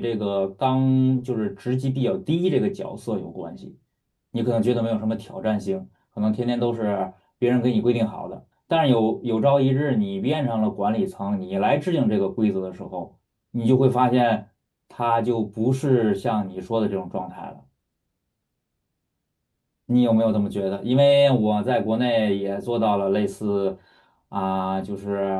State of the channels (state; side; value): identical; both; correlation 1.00